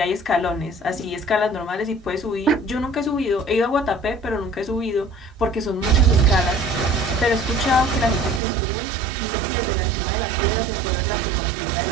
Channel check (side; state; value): left; drops out; at 8.4 s